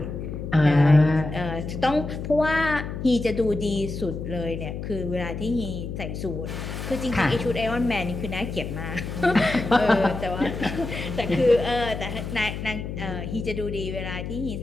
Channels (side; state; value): left; noise; hum, 6 dB below the sound